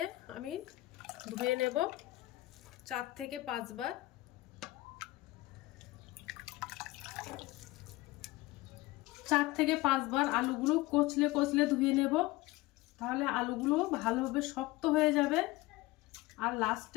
আমি ধুয়ে নেব 4 থেকে 5 বার। আলুগুলো কচলে কচলে ধুয়ে নেব, তাহলে আলুগুলো ভালোভাবে শক্ত হয়ে যাবে। আর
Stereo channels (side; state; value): right; quieter; 19.2 dB